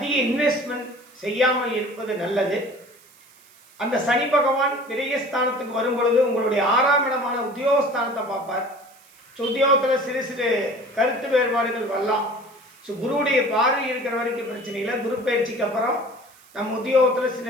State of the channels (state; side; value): noise; right; hiss, 27 dB below the sound